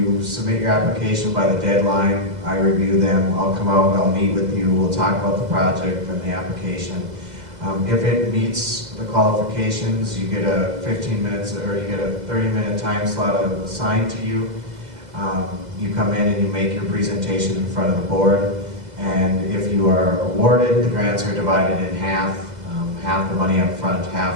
submit your application by the deadline. I review them. I'll come out, I'll meet with you. We'll talk about the project and the application. If it meets the qualifications, you get a 15 minutes or you get a 30-minute time slot assigned to you. You come in and you make your presentation in front of the board. And if you are awarded, the grants are divided in half. Half the money up front,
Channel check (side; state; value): left; late; 2.0 ms